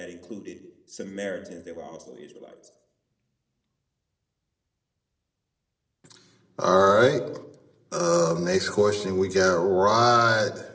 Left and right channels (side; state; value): both; identical; correlation 1.00